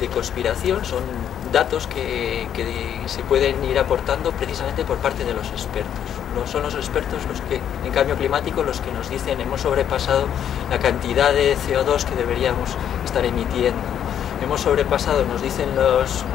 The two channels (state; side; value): quieter; right; 9.4 dB